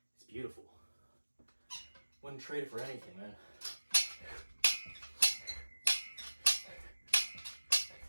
It's beautiful. Wouldn't trade it for anything, man.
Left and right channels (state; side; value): inverted; both; correlation -1.00